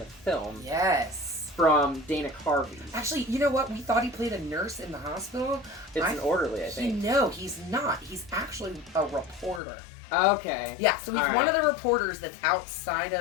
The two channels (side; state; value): right; drops out; at 9.6 s